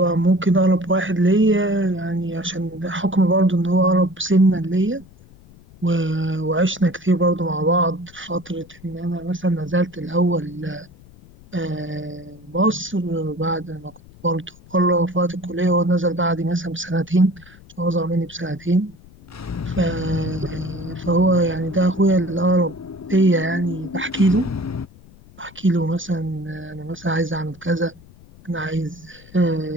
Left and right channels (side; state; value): left; noise; rumble, 23 dB below the sound